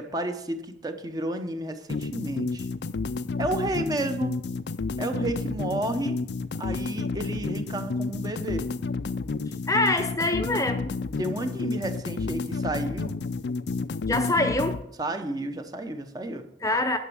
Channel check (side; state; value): both; normal; correlation 0.47